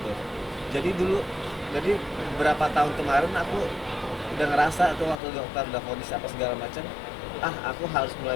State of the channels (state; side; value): drops out; right; at 5.2 s